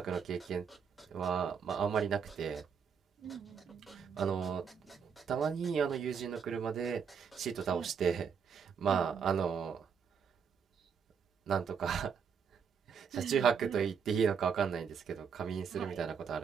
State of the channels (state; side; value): quieter; left; 6.7 dB